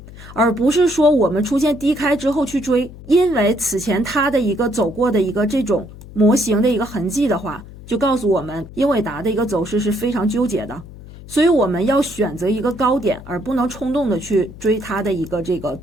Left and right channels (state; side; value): noise; left; hum, 17 dB below the sound